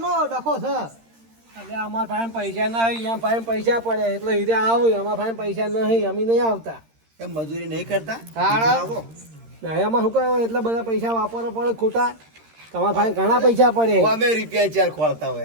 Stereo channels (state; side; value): late; left; 13 ms